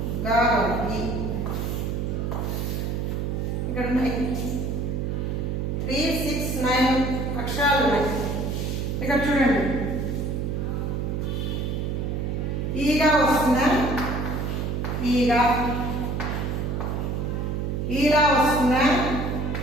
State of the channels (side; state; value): right; noise; hum, 1 dB below the sound